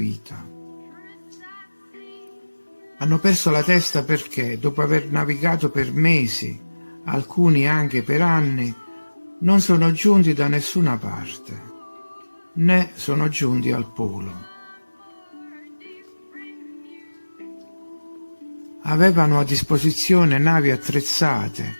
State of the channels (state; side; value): inverted; both; correlation -1.00